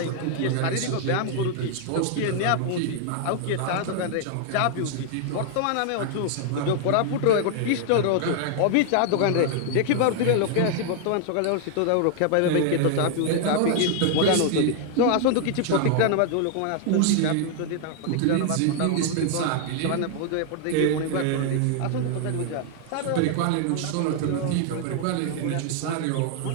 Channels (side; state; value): both; different; correlation 0.00